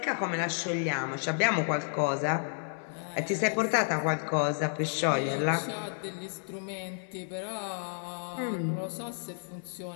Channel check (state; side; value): silent; right; digital silence